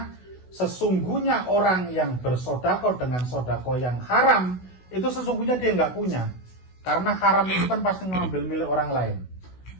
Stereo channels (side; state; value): right; late; 16 ms